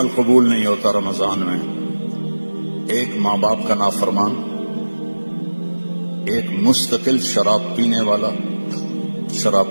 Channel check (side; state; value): both; inverted; correlation -1.00